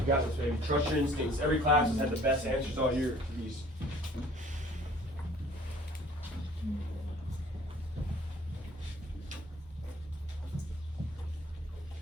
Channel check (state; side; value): normal; both; correlation 0.53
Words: got this, baby. Trust your instincts. Every class has had the best answers all year for these.